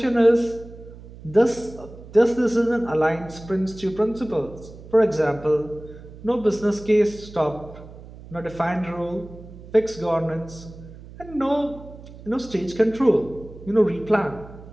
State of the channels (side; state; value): right; noise; hum, 17 dB below the sound